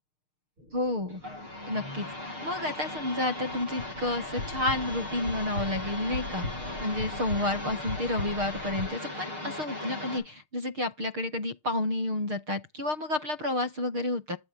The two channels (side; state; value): left; late; 6.5 ms